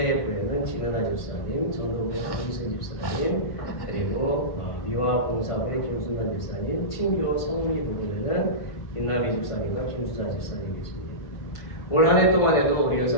진은아 집사님, 전도부의 강희순 집사님, 그리고 미화봉사부의 김순환 집사님, 친교 성미 부분에는 김나비 집사님과 김수자 집사님 계십니다. 올 한 해 동안에도 우리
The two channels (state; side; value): late; right; 1.5 ms